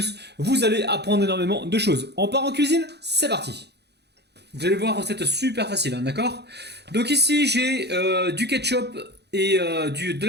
vous allez apprendre énormément de choses. On part en cuisine, c'est parti! Vous allez voir, recette super facile, hein, d'accord? Donc ici j'ai du ketchup et de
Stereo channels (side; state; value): left; late; 0.49 ms